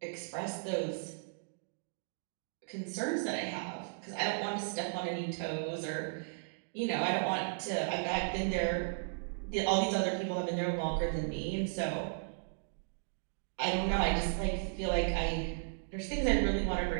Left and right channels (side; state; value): left; silent; digital silence